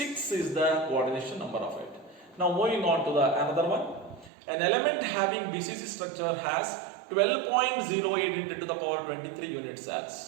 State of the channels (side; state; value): left; drops out; at 4.3 s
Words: is the coordination number of it. Now moving on to the another one. An element having BCC structure has 12.08 into 10 to the power 23 unit